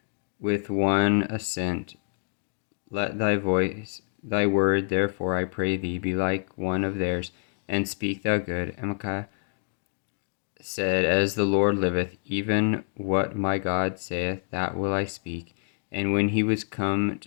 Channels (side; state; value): right; silent; digital silence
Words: With one assent, let thy word, therefore, I pray thee, be like one of theirs, and speak thou good. And Micaiah said, As the Lord liveth, even what my God saith, that will I speak. And when he was come